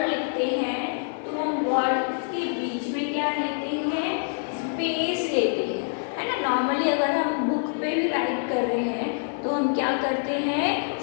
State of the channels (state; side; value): silent; right; 61 dB below the other